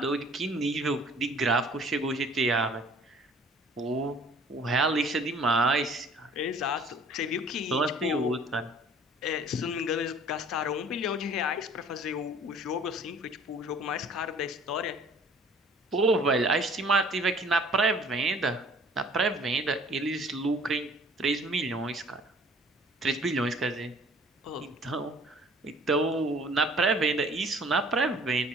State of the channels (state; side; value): normal; both; correlation 0.53